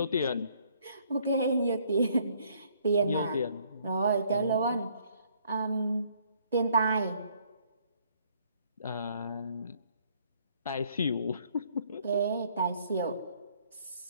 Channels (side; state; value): both; inverted; correlation -0.64